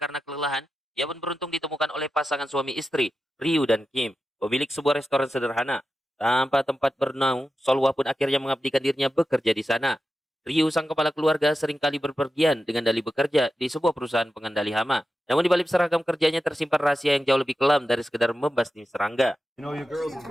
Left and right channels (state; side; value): normal; both; correlation 0.91